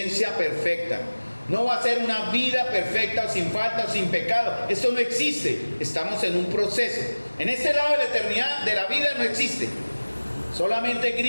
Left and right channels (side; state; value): both; inverted; correlation -1.00